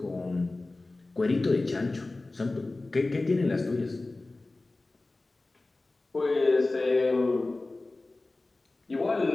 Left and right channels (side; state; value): right; quieter; 3.1 dB